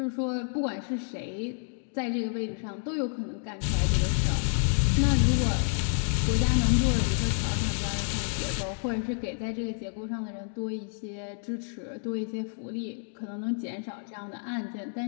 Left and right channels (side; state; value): right; silent; 58 dB below the other